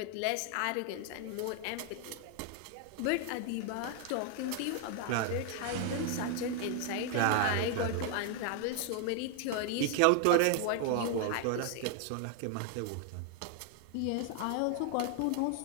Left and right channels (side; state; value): both; different; correlation 0.00